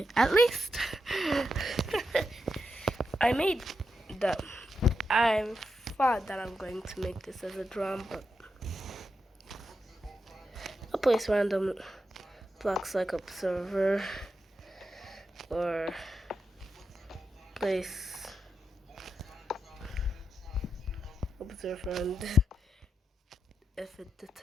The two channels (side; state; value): both; normal; correlation 0.86